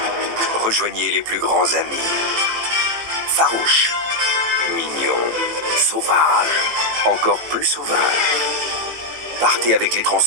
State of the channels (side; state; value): left; late; 18 ms